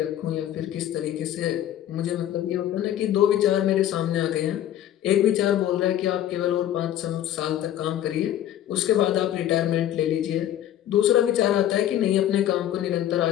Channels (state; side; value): quieter; right; 11.8 dB